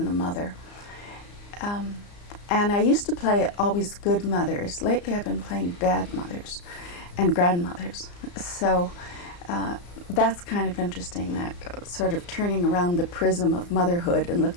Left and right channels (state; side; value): late; right; 34 ms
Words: a mother. And I used to play always good mothers. Lately I've been playing bad mothers and grandmothers. So that's kind of interesting, that sort of turning around the prism of motherhood and